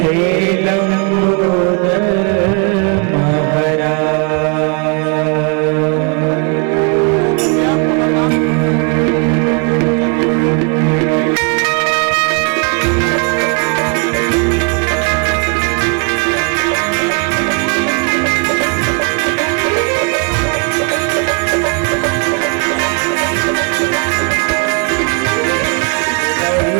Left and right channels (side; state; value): left; quieter; 35.3 dB